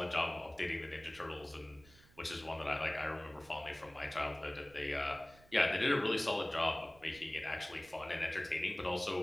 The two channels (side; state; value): right; noise; rumble, 25 dB below the sound